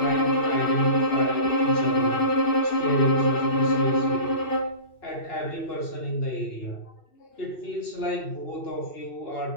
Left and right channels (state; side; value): late; right; 2.7 ms